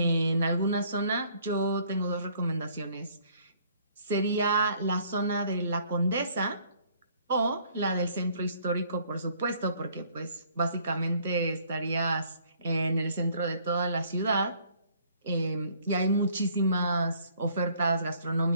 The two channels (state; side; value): inverted; both; correlation -0.61